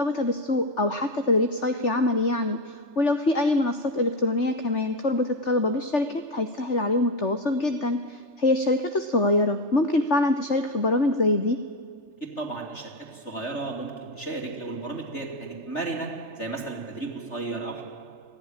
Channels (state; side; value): late; right; 3.4 ms